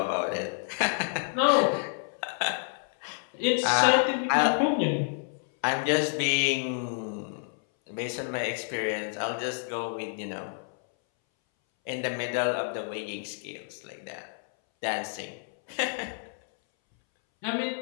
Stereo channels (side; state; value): right; silent; 59 dB below the other